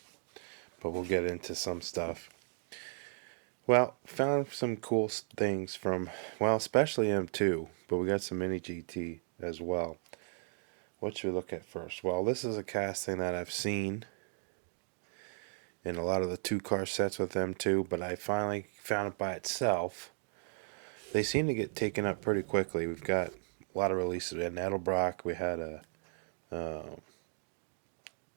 but we'll get into some stuff. Well, found some cool things from, well, especially M2, but we got some mini GT as well. What should we look at first? Well, this is a casting that I've seen in a lot of the two-car sets with M2, but I finally found it by itself. They seem to get taken up pretty quickly. We've got a lot of releases. In Edelbrock, we had I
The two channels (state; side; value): silent; left; digital silence